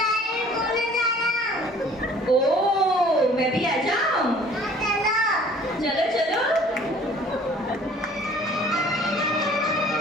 ओ, मैं भी आ जाऊं? चलो चलो।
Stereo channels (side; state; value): both; normal; correlation 0.52